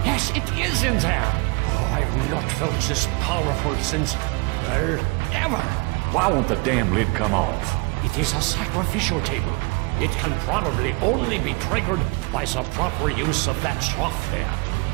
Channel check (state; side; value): quieter; left; 28.4 dB